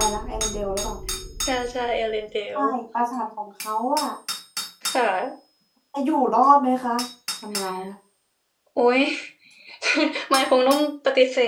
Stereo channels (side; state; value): both; identical; correlation 1.00